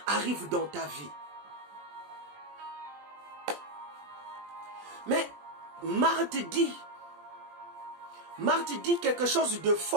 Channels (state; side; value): late; left; 20 ms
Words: arrive dans ta vie. Mais Marthe dit quelque chose de